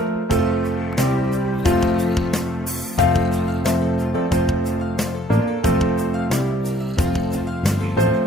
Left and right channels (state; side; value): normal; both; correlation 0.63